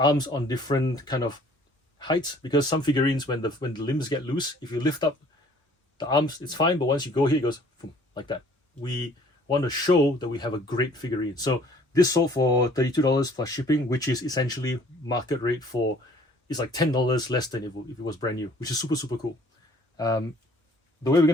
on different kind of heights, because some figurines, when the limbs get loose, if you lift up the arms, it's fine, but once you go here, it goes boom, like that. We want to show that we have a great figurine. So this sold for $32 plus shipping, which is essentially market rate for, it's like $10 less than if it was brand new, which is super, super cool. The way we're going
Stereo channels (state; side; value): normal; both; correlation 0.56